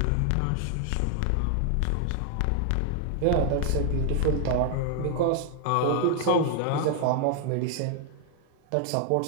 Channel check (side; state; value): both; different; correlation 0.00